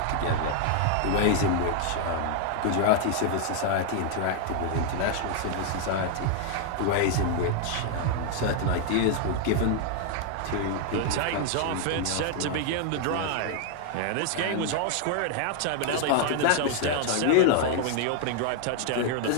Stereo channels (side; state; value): both; different; correlation 0.00